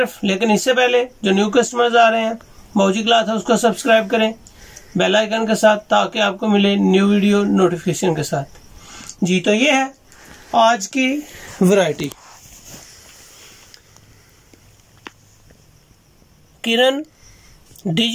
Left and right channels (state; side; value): identical; both; correlation 1.00